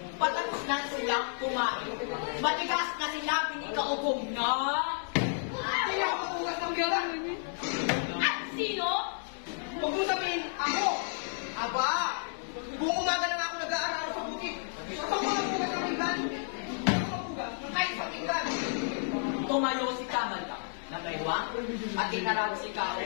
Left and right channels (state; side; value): silent; right; 57 dB below the other